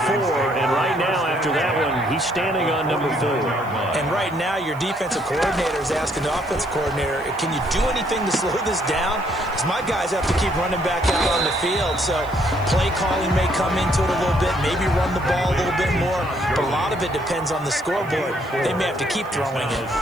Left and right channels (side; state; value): right; noise; hiss, 26 dB below the sound